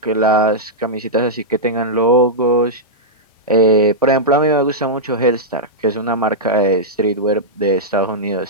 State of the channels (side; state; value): both; normal; correlation -0.09